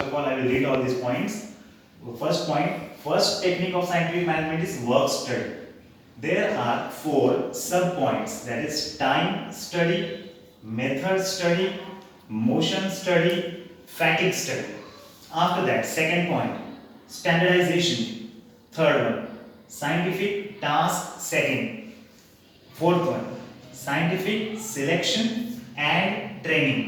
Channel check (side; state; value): both; identical; correlation 1.00